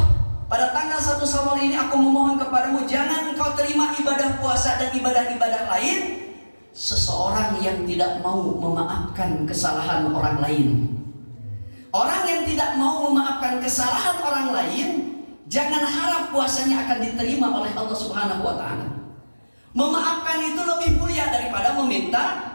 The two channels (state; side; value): inverted; both; correlation -1.00